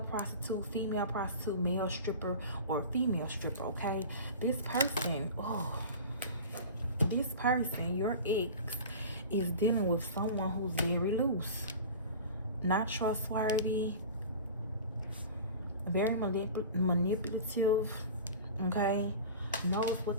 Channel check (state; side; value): inverted; both; correlation -0.35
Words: prostitute, female prostitute, male stripper, or female stripper, okay? This person, your ex, is dealing with someone who's very loose, not trustworthy, very manipulative, okay? Knows